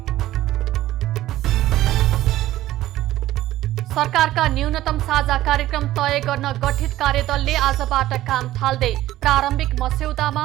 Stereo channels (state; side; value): quieter; left; 14.8 dB